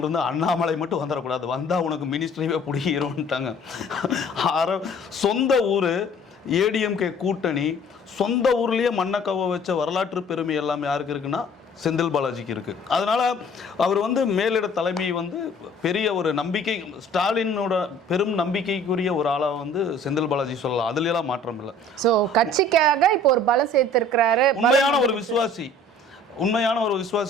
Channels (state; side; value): normal; both; correlation 0.52